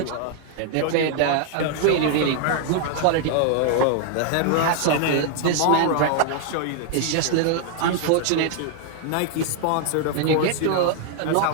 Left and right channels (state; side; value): different; both; correlation 0.00